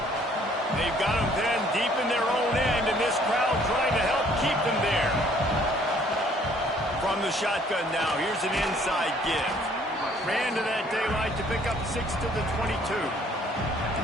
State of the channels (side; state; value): both; normal; correlation 0.60